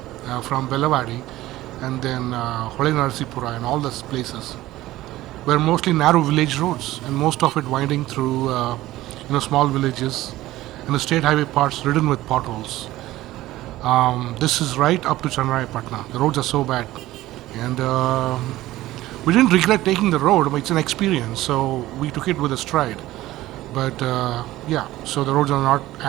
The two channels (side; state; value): left; quieter; 16.2 dB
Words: from Belawadi and then Narasipura and all those places were mostly narrow village roads and most of it winding through small villages and the state highway parts ridden with potholes. This is right up to Channarayapatna. The roads are so bad and we didn't regret taking the road, but it's an experience, so we took it with a stride. But so the roads are not